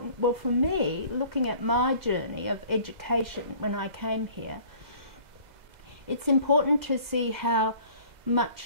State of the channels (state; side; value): late; left; 2.0 ms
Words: well, for me, looking at my journey of education when I came here, it's important to see how